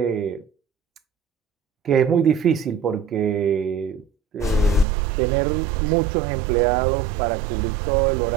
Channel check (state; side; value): drops out; left; at 4.9 s